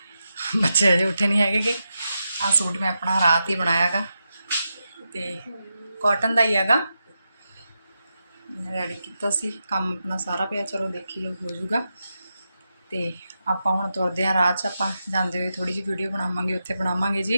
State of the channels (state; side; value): inverted; both; correlation -0.88